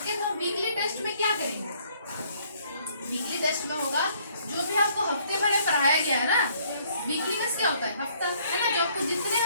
तो वीकली टेस्ट में क्या करेंगे? वीकली टेस्ट में होगा जो भी आपको हफ्ते भर में पढ़ाया गया है ना, वीकली में क्या होता है? हफ्ता, है ना? जो आपको जितने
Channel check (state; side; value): inverted; both; correlation -0.64